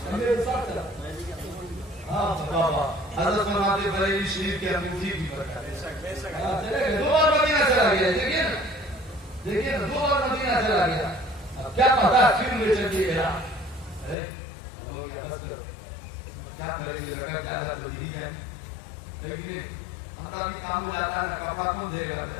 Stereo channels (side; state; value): right; drops out; at 14.2 s